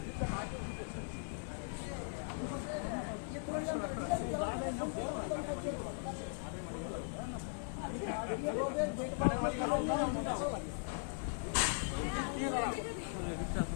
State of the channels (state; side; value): silent; right; digital silence